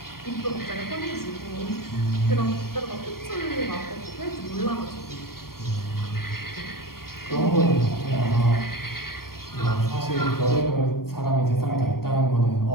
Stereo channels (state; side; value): late; right; 0.93 ms